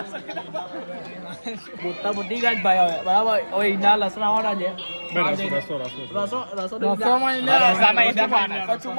મોટા મોટી ગાંઠ ભાઈ હવે. બરાબર. હવે ઈંડા લસણાવાળા છે.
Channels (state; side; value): inverted; both; correlation -1.00